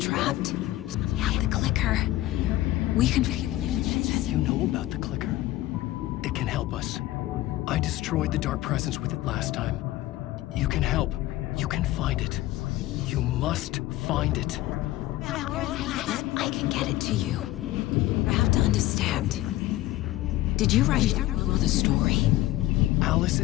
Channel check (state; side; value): quieter; right; 16.3 dB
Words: I have the clicker. We can... You know about the clicker? It can help us. I destroyed the dark presence with it last time. You can help. You can find it. You must find it. I can get it to you. I have to understand. Did you write down the story? Alice